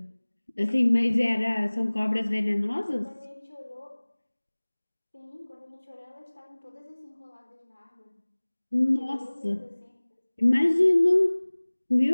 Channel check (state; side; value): inverted; both; correlation -1.00